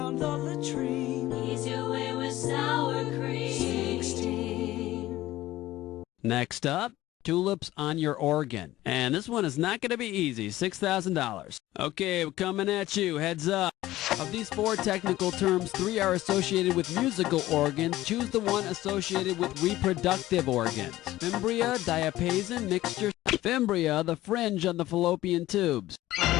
the latrine. Ease your way with sour cream. 16. Next up, tulips on your organ. And this one is not going to be easy. $6,000. Okay, we're coming at you. Heads up. Of these 4 technical terms, 3 are associated with musical organs. Choose the one associated with reproductive organs. Fimbria, diapason, mixture. Fimbria, the fringe on the fallopian tubes.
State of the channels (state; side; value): quieter; right; 15.9 dB